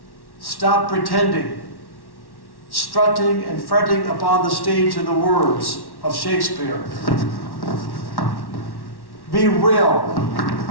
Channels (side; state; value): right; late; 1.1 ms